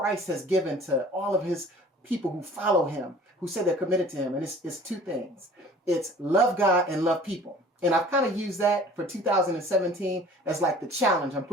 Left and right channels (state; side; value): normal; both; correlation 0.47